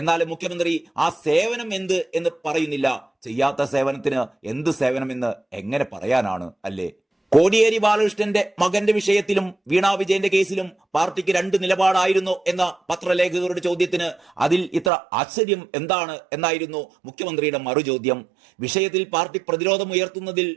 മുഖ്യമന്ത്രി ആ സേവനം എന്ത് എന്ന് പറയുന്നില്ല. ചെയ്യാത്ത സേവനത്തിന് എന്ത് സേവനമെന്ന് എങ്ങനെ പറയാനാണ് അല്ലേ? കോടിയേരി ബാലകൃഷ്ണന്റെ മകന്റെ വിഷയത്തിലും വീണ വിജയന്റെ കേസിലും പാർട്ടിക്ക് രണ്ട് നിലപാടായിരുന്നു എന്ന പത്രലേഖകരുടെ ചോദ്യത്തിന് അതിൽ ഇത്ര ആശ്ചര്യം എന്താണ് എന്നായിരുന്നു മുഖ്യമന്ത്രിയുടെ മറുചോദ്യം. വിഷയത്തിൽ പാർട്ടി പ്രതിരോധം ഉയർത്തുന്നതിൽ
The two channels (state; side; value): drops out; left; at 14.9 s